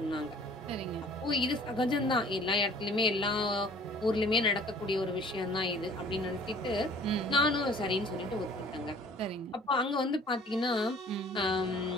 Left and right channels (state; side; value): normal; both; correlation 0.52